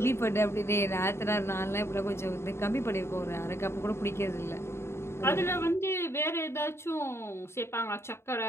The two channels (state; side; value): late; right; 0.12 ms